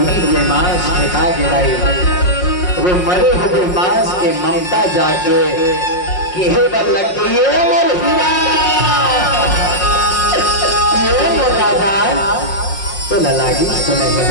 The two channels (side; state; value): right; late; 5.5 ms